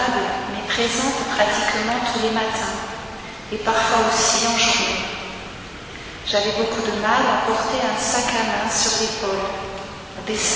mais présentes pratiquement tous les matins, et parfois aussi en journée. J'avais beaucoup de mal à porter un sac à main sur l'épaule, des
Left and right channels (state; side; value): identical; both; correlation 1.00